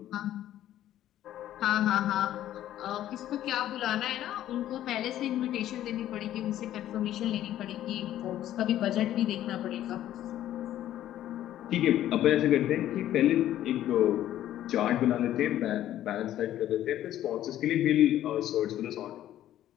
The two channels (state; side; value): quieter; right; 12.5 dB